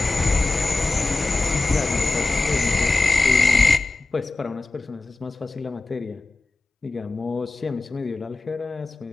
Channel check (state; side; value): quieter; right; 3.3 dB